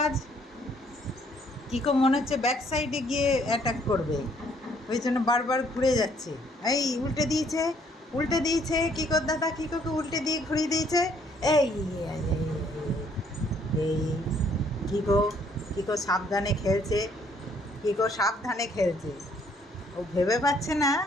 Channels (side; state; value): both; normal; correlation 0.65